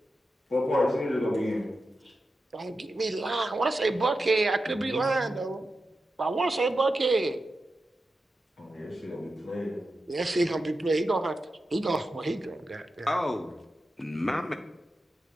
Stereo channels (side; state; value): both; normal; correlation 0.90